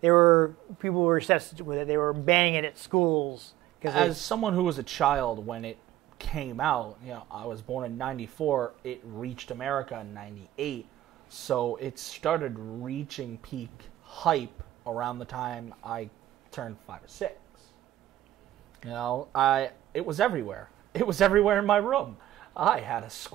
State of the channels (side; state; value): left; quieter; 14.1 dB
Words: People were obsessed with it. They were banning it at schools. As someone who was a child when it came out, I was born in '94. It reached America in '98, so it started reaching peak hype around the time I turned 5 or 6. It was everywhere. It was everywhere in my room. I had a